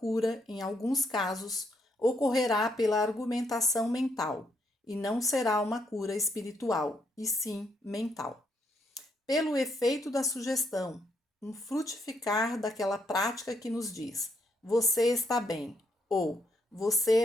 em alguns casos, ocorrerá pela argumentação mental, e não será uma cura espiritual, e sim mental. Pelo efeito da sugestão, um frutificar daquela prática que nos diz: você está bem, ou você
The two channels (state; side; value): normal; both; correlation 0.75